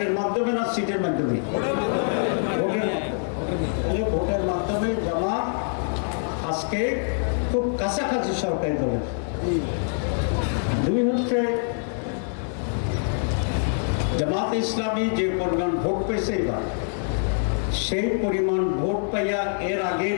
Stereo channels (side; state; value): right; silent; digital silence